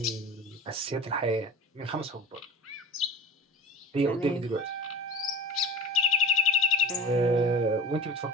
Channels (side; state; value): both; normal; correlation 0.36